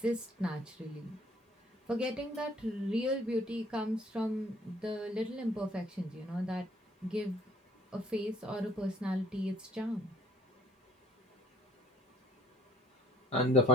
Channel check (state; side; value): normal; both; correlation 0.59